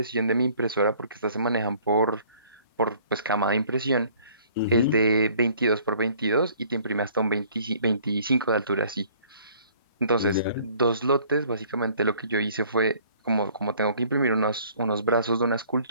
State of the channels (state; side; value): inverted; both; correlation -0.56